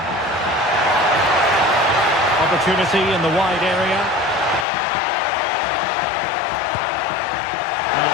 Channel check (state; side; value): drops out; right; at 4.7 s